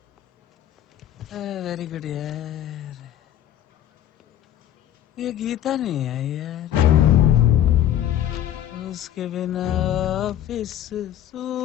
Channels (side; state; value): right; quieter; 11.4 dB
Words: Very good यार। ये गीता नहीं है यार, उसके बिना ऑफिस